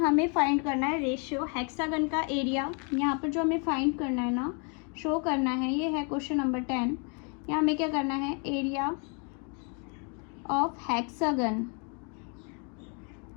फाइंड करना है रेशियो, हेक्सागन का एरिया यहाँ पर जो हमें फाइंड करना है ना, शो करना है, ये है क्वेश्चन नंबर 10। यहाँ हमें क्या करना है, एरिया ऑफ हेक्सागन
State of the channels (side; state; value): right; quieter; 37.2 dB